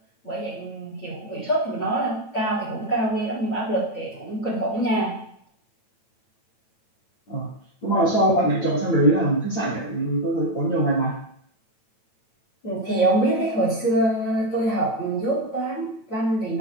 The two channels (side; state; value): right; late; 9.0 ms